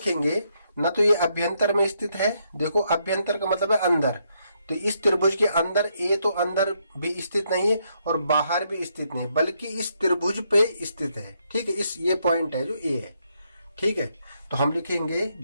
न तो ये अभ्यंतर में स्थित है, देखो अभ्यंतर का मतलब है अंदर, तो इस त्रिभुज के अंदर A तो अंदर भी स्थित नहीं है और बाहर भी स्थित नहीं, बल्कि इस त्रिभुज पे स्थित है। ठीक है, इस ये पॉइंट है जो A है। ठीक है, तो हम लिखेंगे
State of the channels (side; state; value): both; inverted; correlation -0.76